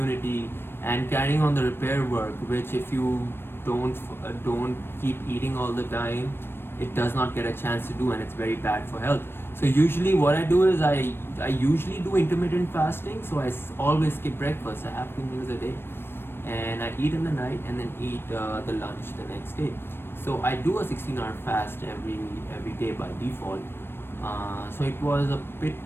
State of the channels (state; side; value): late; right; 0.11 ms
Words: and carrying on the repair work. Which, if you don't keep eating all the time, it does not get a chance to do, and it's very bad for health. So usually what I do is, I usually do intermittent fasting. So I always skip breakfast. I have 2 meals a day, and I eat in the night and then eat the lunch the next day. So I do a 16-hour fast every day by default. So it was a bit